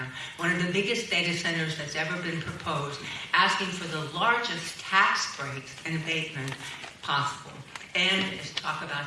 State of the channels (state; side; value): identical; both; correlation 1.00